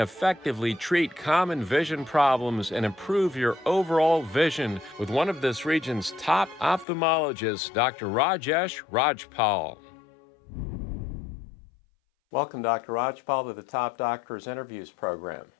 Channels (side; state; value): right; drops out; at 6.9 s